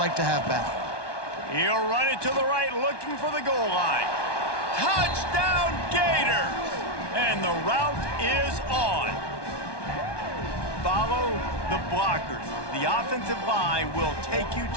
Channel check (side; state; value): right; late; 1.2 ms